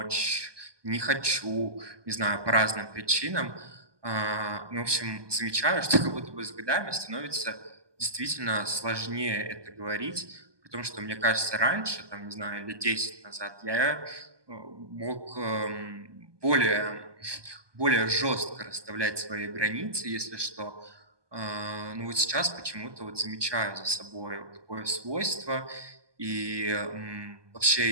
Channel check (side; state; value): left; late; 1.2 ms